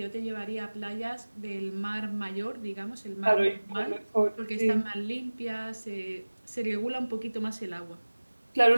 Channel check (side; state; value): both; inverted; correlation -1.00